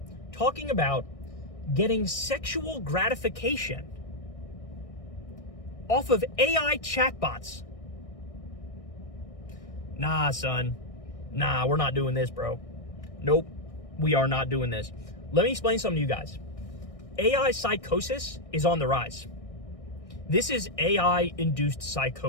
talking about getting sexual gratification off of AI chatbots. Nah, son. Nah, we're not doing this, bro. Nope, we are not doing this. Let me explain something to you guys. AI psychosis is on the rise. This is AI-induced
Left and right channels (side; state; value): right; late; 1.6 ms